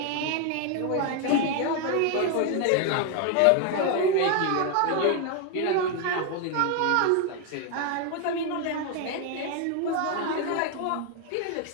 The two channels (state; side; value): different; both; correlation 0.01